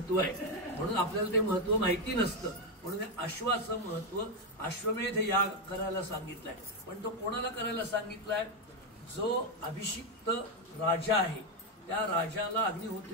आहे. म्हणून आपल्याला ते महत्व माहिती नसतं. म्हणून अश्वाचं महत्व, अश्वमेध याग करायला सांगितलंय. पण तो कोणाला करायला सांगितलाय, जो अभिषिक्त राजा आहे त्या राजाला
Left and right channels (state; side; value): normal; both; correlation 0.06